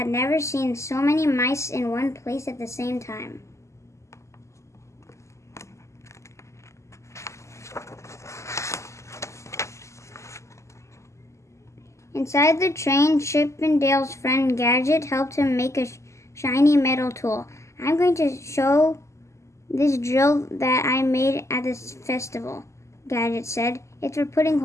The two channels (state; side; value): late; right; 0.14 ms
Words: never seen so many mice in one place at the same time. Inside the train, Chip and Dale's friend Gadget helped him make a shiny metal tool. "I'm going to show this drill that I made at this festival," Gadget said. "It's for putting